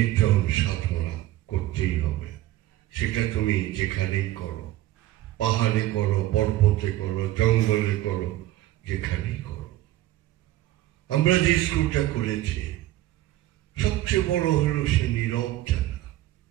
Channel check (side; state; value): left; quieter; 15.2 dB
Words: সাধনা করতেই হবে। সেটা তুমি যেখানেই করো, পাহাড়ে করো, পর্বতে করো, জঙ্গলে করো, যেখানেই করো। আমরা যে স্কুলটা করেছি, সবচেয়ে বড় হলো সে নীরব জায়গা।